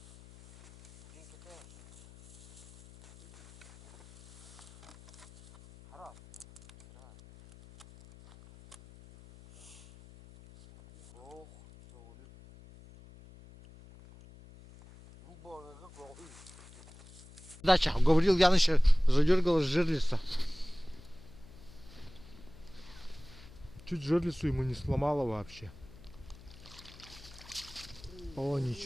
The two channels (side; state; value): left; noise; hum, 20 dB below the sound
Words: Деньги тоже. Раз. Ох, sorry. Дача, говорил, Яныч задергалась жерлица. Чуть жерлицу ему не сломало вообще. О,